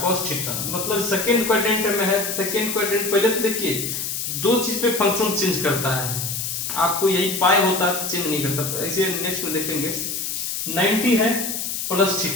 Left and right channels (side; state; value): left; noise; hiss, 3 dB below the sound